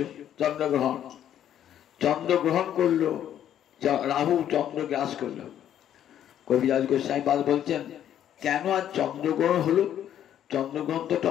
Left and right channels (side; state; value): right; quieter; 10.5 dB